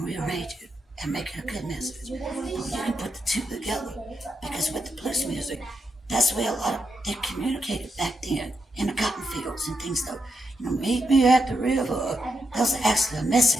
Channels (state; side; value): normal; both; correlation 0.84